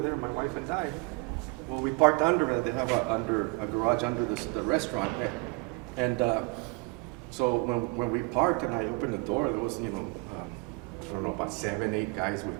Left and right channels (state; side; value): quieter; left; 28.9 dB